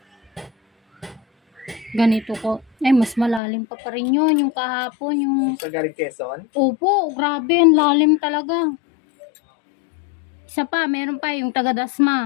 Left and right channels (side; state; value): right; drops out; at 3.4 s